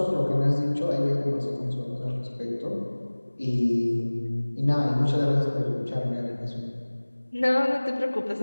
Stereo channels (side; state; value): both; inverted; correlation -1.00